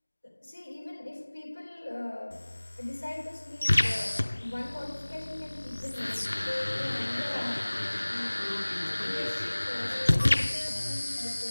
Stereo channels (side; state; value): both; inverted; correlation -1.00